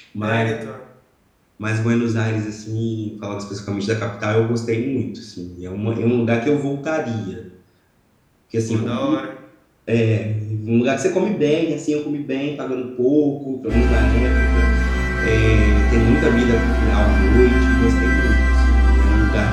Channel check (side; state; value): both; identical; correlation 1.00